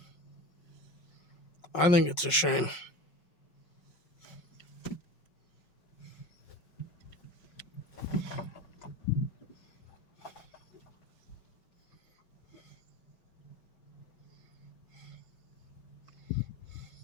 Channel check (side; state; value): right; late; 5.8 ms